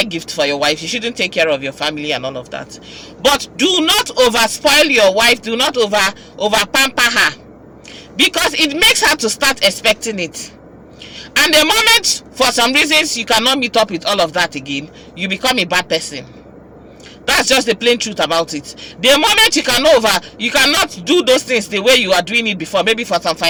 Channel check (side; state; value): both; identical; correlation 1.00